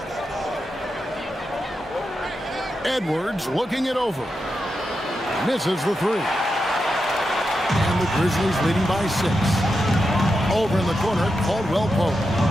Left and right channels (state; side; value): normal; both; correlation 0.87